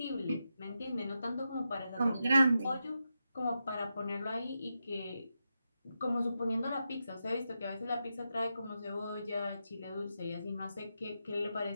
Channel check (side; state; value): both; inverted; correlation -0.87